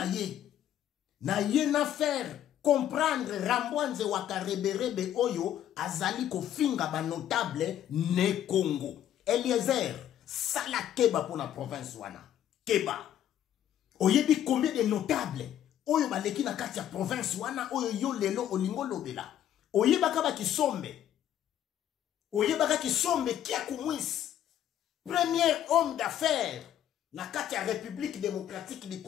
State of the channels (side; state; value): right; quieter; 11.0 dB